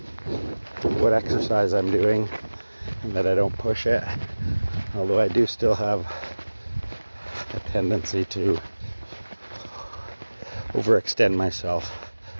what exercise I'm doing, and that I don't push it, although I do still have a tendency to overextend myself.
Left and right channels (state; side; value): inverted; both; correlation -1.00